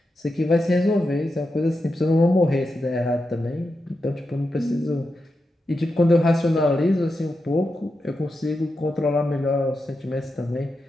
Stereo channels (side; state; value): both; normal; correlation 0.88